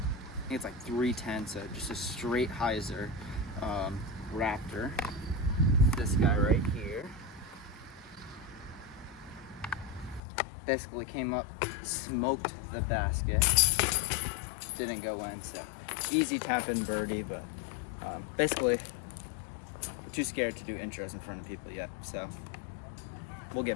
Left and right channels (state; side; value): drops out; right; at 10.2 s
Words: think it's like 310, so just a straight hyzer Raptor. This guy right here basically came up, smoked the basket, didn't go in, so easy tap in birdie, but basically too scared to do intros in front of people yet, so we'll